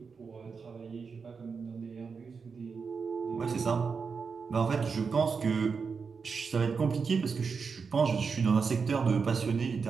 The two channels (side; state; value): left; quieter; 5.4 dB